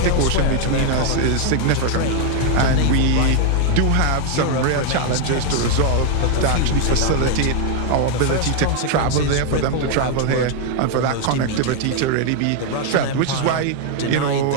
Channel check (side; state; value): both; different; correlation 0.00